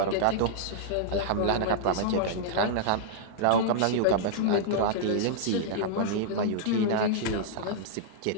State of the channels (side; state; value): both; different; correlation -0.01